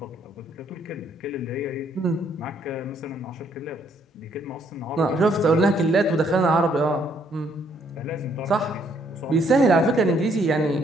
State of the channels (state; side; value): normal; both; correlation 0.68